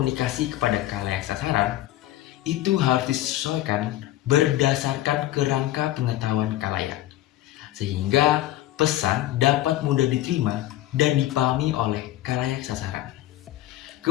kepada khalayak sasaran, itu harus disesuaikan berdasarkan kerangka pengetahuan khalayak, sehingga pesan dapat mudah diterima dan dipahami oleh khalayak sasaran.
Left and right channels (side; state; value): right; quieter; 14.6 dB